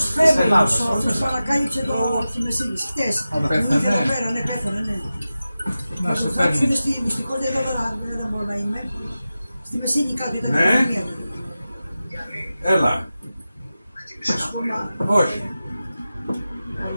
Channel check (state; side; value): inverted; both; correlation -0.94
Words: της Φέβρος, Ελλάδος. ο οποίος παρακάλυψε τη Μεσίνης, χτες. πέθανε. Μου είχε εδώ πέρα, ναι, πέθανε, ναι. Να σε Θα φέρνει. έρθουν στη μυστικότητα εδώ, δεν μπορώ να είμαι. Στη Μεσίνη κάτω ήταν η Ναι. πανδημία. Έλα. Όχι.